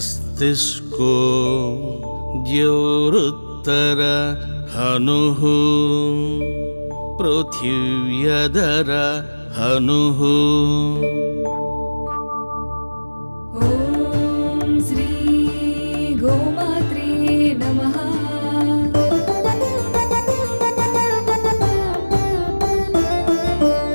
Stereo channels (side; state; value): both; inverted; correlation -1.00